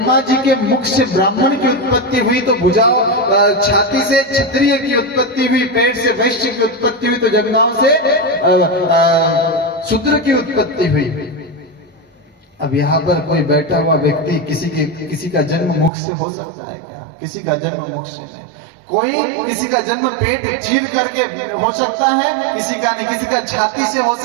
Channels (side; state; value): left; drops out; at 15.9 s